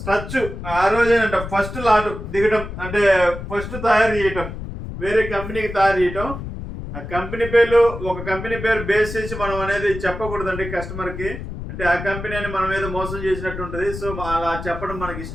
ఆ రోజేనంట ఫస్ట్ లాట్ దిగటం, అంటే ఫస్ట్ తయారు చేయటం, వేరే కంపెనీకి తయారు చేయటం. ఆ కంపెనీ పేర్లు ఒక కంపెనీ పేరు బేస్ చేసి మనం అనేది చెప్పకూడదండి కస్టమర్కి, అంటే ఆ కంపెనీ అని మనం ఏదో మోసం చేసినట్టు ఉంటుంది. సో అలా చెప్పడం మనకి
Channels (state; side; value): noise; left; rumble, 8 dB below the sound